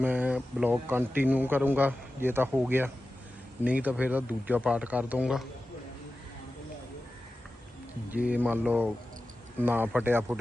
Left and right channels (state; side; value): normal; both; correlation 0.94